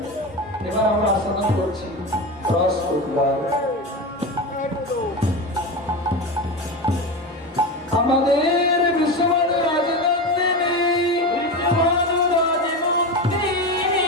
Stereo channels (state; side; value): normal; both; correlation 0.22